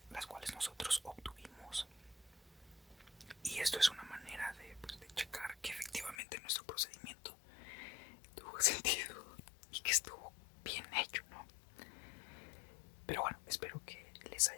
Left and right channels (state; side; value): drops out; right; at 6.2 s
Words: las cuales nosotros obtuvimos, y esto es una manera de, pues, de checar que efectivamente nuestro procedimiento tuvo sentido y que estuvo bien hecho, ¿no? Pero bueno, espero que les